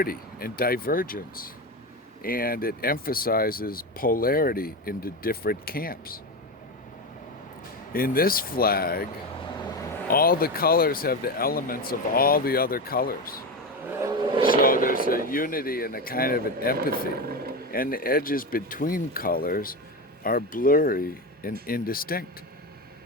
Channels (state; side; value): normal; both; correlation 0.18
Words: and divergence, and it emphasizes polarity into different camps. In this flag, all the colors have the elements of all the other colors. So there's a unity and a kind of an empathy. And the edges between colors are blurry and indistinct.